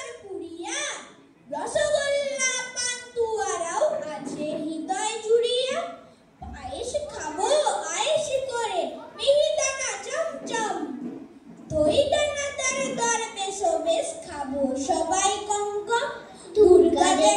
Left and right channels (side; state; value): both; identical; correlation 1.00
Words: রসগোল্লা পান্তুয়ারাও আছে হৃদয় জুড়িয়া। পায়েস খাবো আয়েস করে মিহিদানা চমচম, দই দানাদার দরবেশ বেশ খাবো সবাই কঙ্কম। দুর্গা